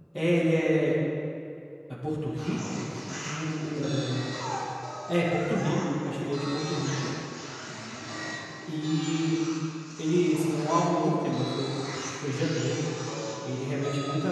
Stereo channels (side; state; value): both; identical; correlation 1.00